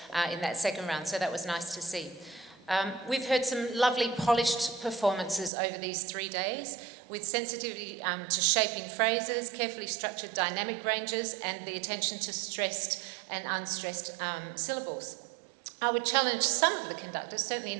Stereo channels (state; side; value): drops out; left; at 5.5 s